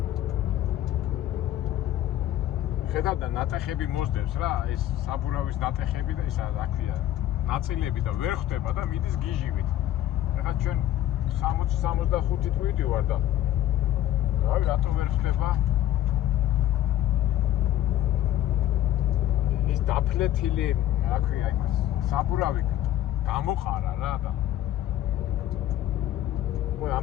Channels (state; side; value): quieter; right; 12.7 dB